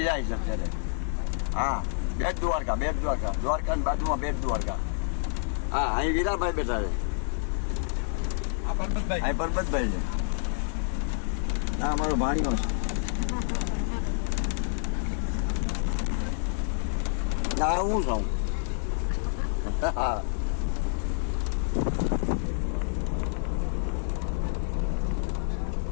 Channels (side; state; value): right; silent; 59 dB below the other